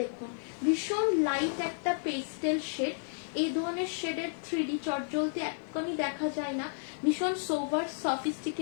দেখুন, ভীষণ লাইট একটা পেস্টেল শেড। এই ধরনের শেডের 3D চটজলদি একদমই দেখা যায় না, ভীষণ সোভার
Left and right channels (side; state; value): right; silent; 56 dB below the other